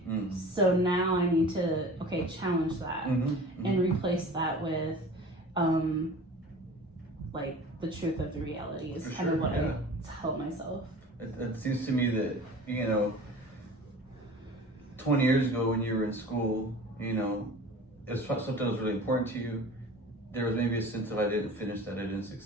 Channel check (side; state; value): both; normal; correlation 0.41